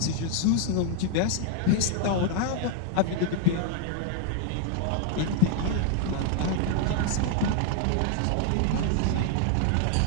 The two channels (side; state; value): both; different; correlation 0.00